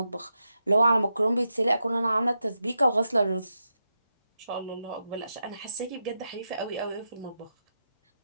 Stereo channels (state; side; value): inverted; both; correlation -0.86